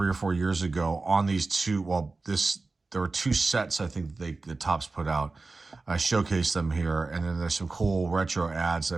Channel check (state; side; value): quieter; left; 3.7 dB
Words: or 4 years ago on these two. Well, there were 2 sets I think the Topps put out. I showcased them here, and then there's some cool retro ads that